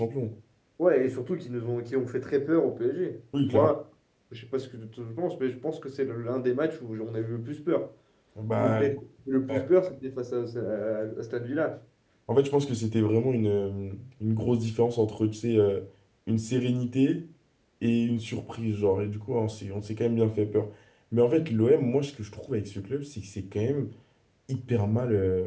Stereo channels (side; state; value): both; identical; correlation 1.00